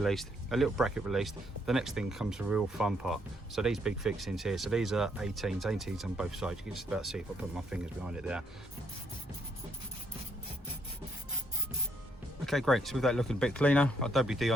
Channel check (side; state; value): both; normal; correlation 0.71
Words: a little bracket released, the next thing comes the real fun part. So these big fixings here, so these are 18s on both sides. You can just about see if I put my fingers behind it there. Okay, great, so with that looking a bit cleaner, our WD